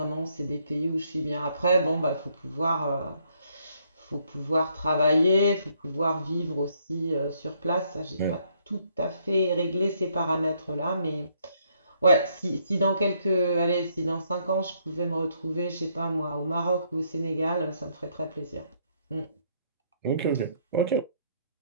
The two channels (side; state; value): both; inverted; correlation -0.70